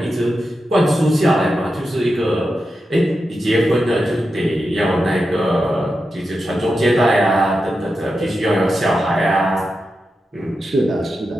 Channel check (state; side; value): normal; both; correlation 0.89